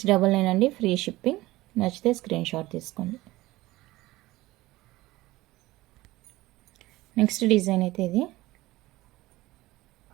అండి, ఫ్రీ షిప్పింగ్. నచ్చితే స్క్రీన్ షాట్ తీసుకోండి. నెక్స్ట్ డిజైన్ అయితే ఇది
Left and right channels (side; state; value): left; quieter; 18.5 dB